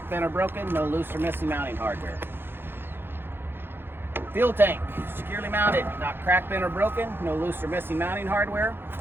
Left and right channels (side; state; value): left; late; 0.10 ms